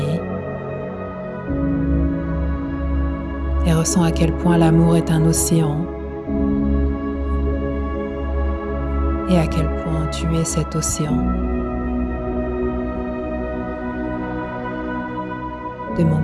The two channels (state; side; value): identical; both; correlation 1.00